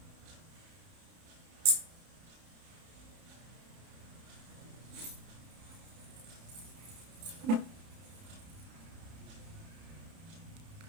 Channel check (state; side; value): late; left; 31 ms